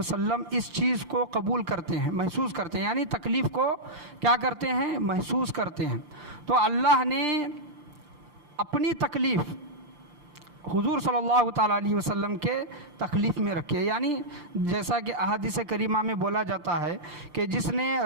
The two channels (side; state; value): left; late; 5.8 ms